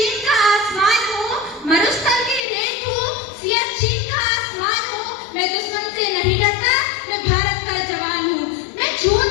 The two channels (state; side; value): drops out; right; at 2.5 s